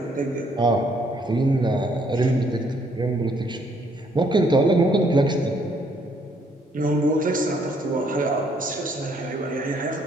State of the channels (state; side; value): normal; both; correlation 0.68